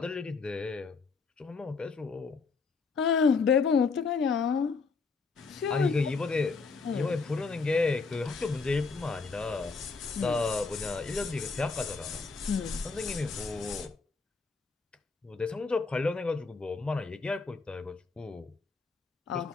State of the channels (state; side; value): quieter; right; 4.5 dB